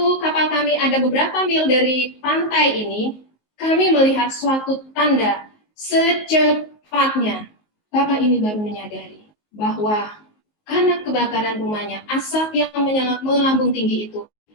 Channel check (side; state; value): right; late; 19 ms